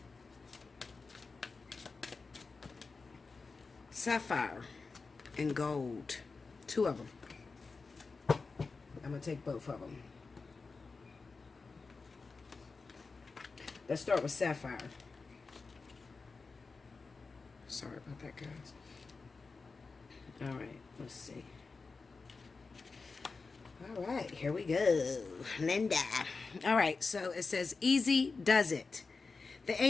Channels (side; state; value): right; quieter; 4.3 dB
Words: Sapphire and gold. Two of them. I'm going to take both of them. Let's start with Sapphire. Sorry about that, guys. All right, let's see. All right, here we go. Linda. All right, so it says, easy does it. The